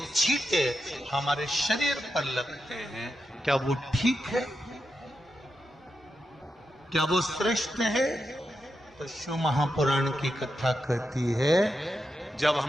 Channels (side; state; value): both; normal; correlation 0.87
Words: छींटे हमारे शरीर पर लगते हैं। क्या वो ठीक है? क्या वो श्रेष्ठ है? तो शिव महापुराण की कथा कहती है, जब